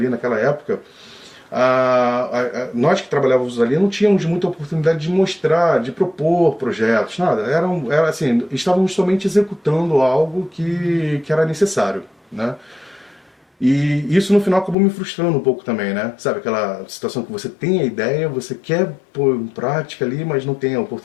naquela época, nós que trabalhávamos ali não tínhamos muita oportunidade de mostrar, de propor projetos, nada. Era assim, estávamos somente executando algo que era necessário, né? E isso no final acabou me frustrando um pouco também, né? Sabe aquela situação que você tem a ideia, você quer pôr em prática ali, mas não tem a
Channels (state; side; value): drops out; right; at 14.8 s